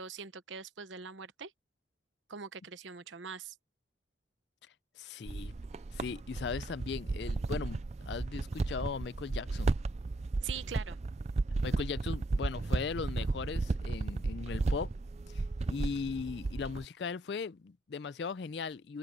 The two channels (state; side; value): normal; both; correlation 0.70